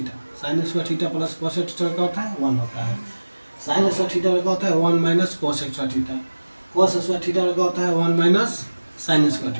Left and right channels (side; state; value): both; inverted; correlation -1.00